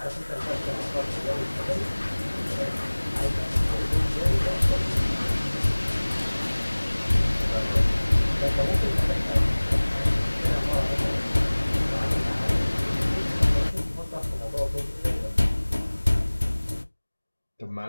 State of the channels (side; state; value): both; inverted; correlation -1.00